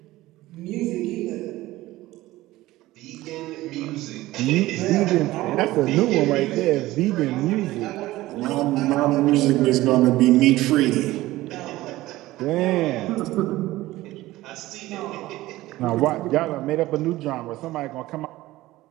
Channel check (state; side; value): quieter; left; 17.3 dB